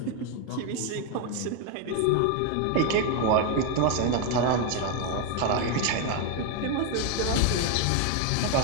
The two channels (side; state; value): both; different; correlation 0.01